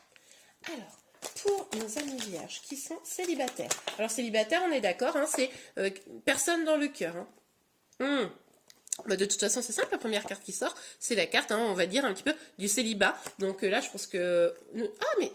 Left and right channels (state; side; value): identical; both; correlation 1.00